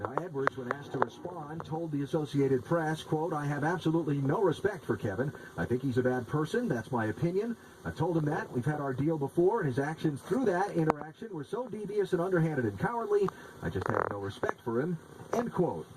Edwards, when asked to respond, told the Associated Press, quote, "I have absolutely no respect for Kevin. I think he's a bad person. That's my opinion. I told him that. We've had our deal before, and his actions through that interaction were so devious and underhanded and cowardly. I just have no respect for him." End quote.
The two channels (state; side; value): identical; both; correlation 1.00